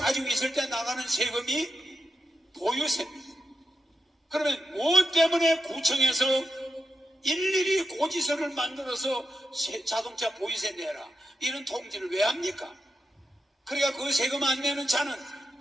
있을 때 나가는 세금이 보유세입니다. 그러면 무엇 때문에 구청에서 일일이 고지서를 만들어서 자동차 보유세 내라 이런 통지를 왜 합니까? 그러니까 그 세금 안 내는 차는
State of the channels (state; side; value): normal; both; correlation 0.87